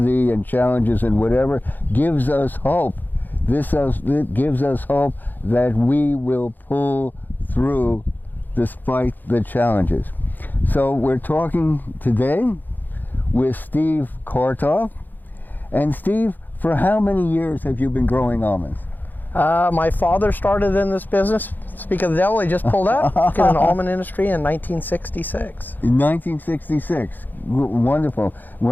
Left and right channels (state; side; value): late; right; 0.087 ms